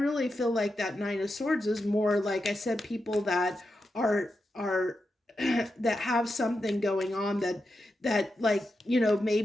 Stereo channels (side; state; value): both; normal; correlation 0.88